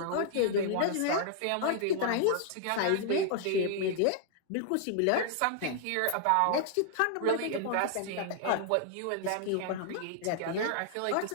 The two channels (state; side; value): different; both; correlation -0.01